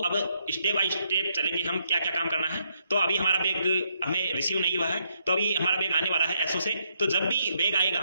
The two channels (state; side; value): inverted; both; correlation -0.76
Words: अब स्टेप बाय स्टेप चलेंगे हम क्या क्या काम करना है। तो अभी हमारा बैग हमें रिसीव नहीं हुआ है, तो अभी हमारा बैग आने वाला है एसओ से। तो जब भी बैग आएगा